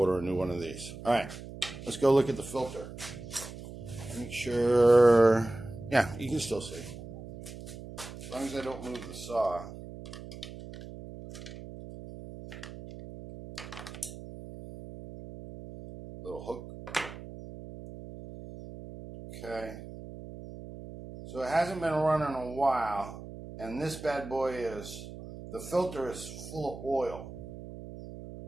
a new one of these. All right, let's go look at the filter. Make sure, yeah, you can still see. As long as I don't move the saw. Okay. So it hasn't been running a while, and this bad boy is, the filter is full of oil.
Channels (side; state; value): right; noise; hum, 12 dB below the sound